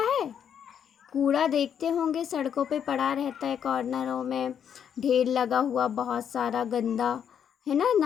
है? कूड़ा देखते होंगे सड़कों पे पड़ा रहता है, कॉर्नरों में ढेर लगा हुआ बहुत सारा गंदा, है ना,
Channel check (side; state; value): right; quieter; 8.4 dB